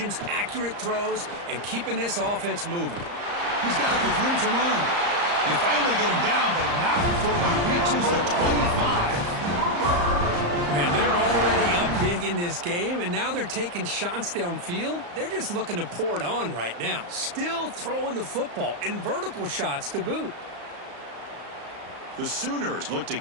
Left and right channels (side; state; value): left; late; 34 ms